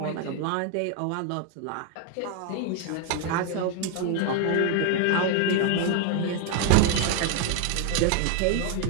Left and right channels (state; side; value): different; both; correlation 0.01